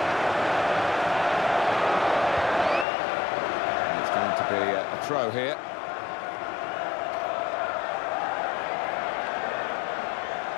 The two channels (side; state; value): right; drops out; at 2.9 s